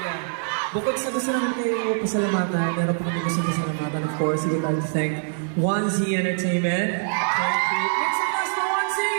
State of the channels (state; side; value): silent; left; digital silence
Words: Bukod sa gusto namin kayo pasalamatan, meron po kami gusto pasalamatan. Of course, we would like to thank 1Z Entertainment. Thank you. Make some noise for 1Z!